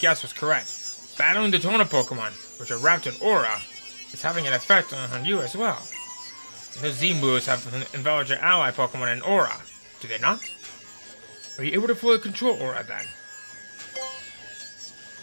was correct. Battling the Tona Pokemon, which are wrapped in aura, is having an effect on you as well. Those Z-moves have enveloped your ally Pokemon in aura. Do they not? Are you able to fully control aura then?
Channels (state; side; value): inverted; both; correlation -1.00